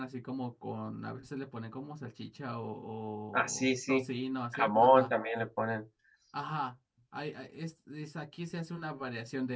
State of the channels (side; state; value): both; identical; correlation 1.00